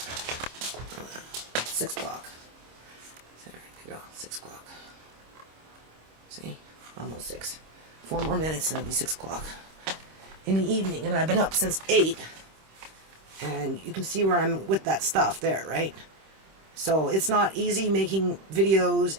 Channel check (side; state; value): left; late; 26 ms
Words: 6 o'clock. There you go, 6 o'clock. See, almost 6. 4 more minutes and it'll be 6 o'clock in the evening, and I've been up since 8. And you can see where I'm with that stuff there, right? So it's not easy making videos,